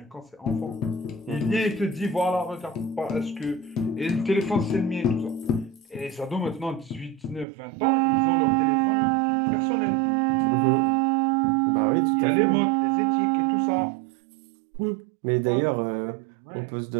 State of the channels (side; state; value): left; drops out; at 7.5 s